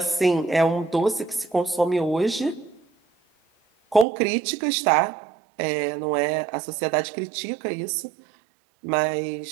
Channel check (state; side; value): drops out; left; at 4.0 s